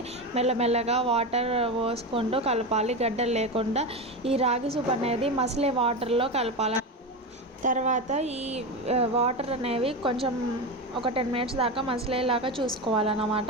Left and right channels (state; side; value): normal; both; correlation 0.19